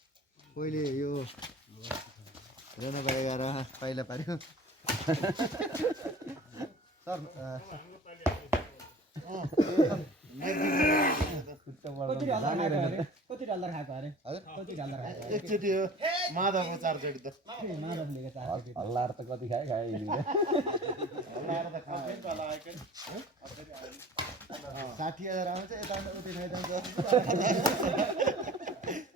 पहिले यो रेनोबारी गएर पहिला पार्यो सर कति डलर खाएको अरे कति डलर खाएको एकचोटि हो माधवको 4 चोटि त माधवले हल्लाएर त कति खाए हल्लाएर त खाए तल आएकै 60,000 आउँछ यता उतै खाइदिन्छ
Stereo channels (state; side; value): normal; both; correlation 0.43